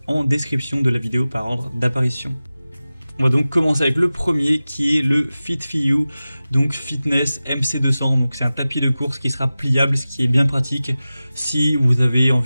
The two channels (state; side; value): inverted; both; correlation -0.96